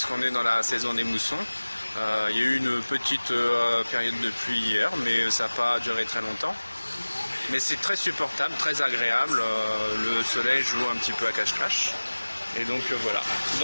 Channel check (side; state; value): both; inverted; correlation -1.00